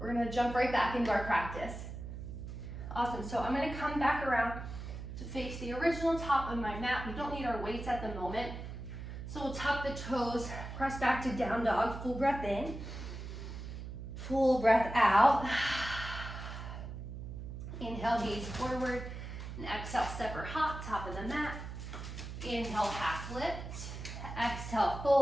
gonna jump right back into our practice. Awesome, so I'm gonna come back around to face the original top of my mat. We don't need our weights at the moment. So we'll tuck the toes, press back to down dog, full breath in, full breath out. Inhale, gaze forward, and exhale, step or hop, top of the mat. Inhale, half lift, exhale,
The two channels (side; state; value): right; noise; hum, 8 dB below the sound